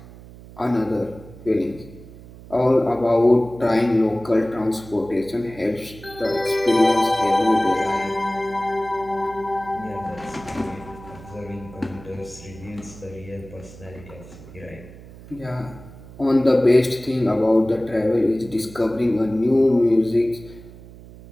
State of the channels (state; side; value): noise; right; hum, 18 dB below the sound